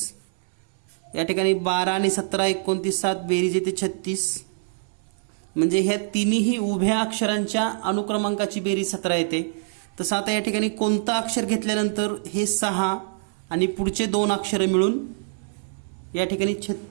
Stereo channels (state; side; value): silent; left; 60 dB below the other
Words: या ठिकाणी 12 आणि 17 29 7 बेरीज येते 36. म्हणजे ह्या तिन्ही उभ्या अक्षरांच्या अनुक्रमांकाची बेरीज 17 येते. तसं आता या ठिकाणी कोणतं अक्षर घेतल्यानंतर हे 6 आणि पुढचे 2 अक्षर मिळून या ठिकाणी